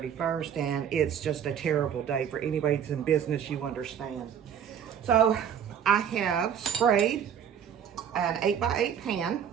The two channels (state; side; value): quieter; left; 8.5 dB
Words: and it's just a terrible day for anybody that's in business, you understand. So I have sprayed an 8x8 pan.